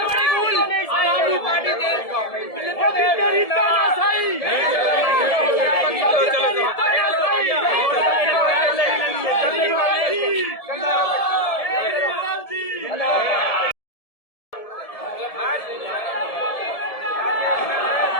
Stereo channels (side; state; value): right; late; 1.7 ms